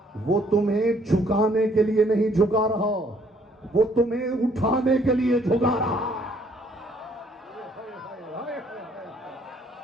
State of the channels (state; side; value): normal; both; correlation 0.64